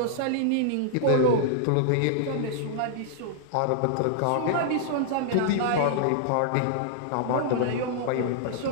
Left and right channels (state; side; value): different; both; correlation -0.01